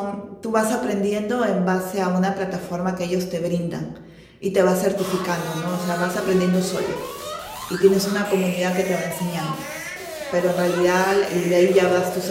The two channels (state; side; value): identical; both; correlation 1.00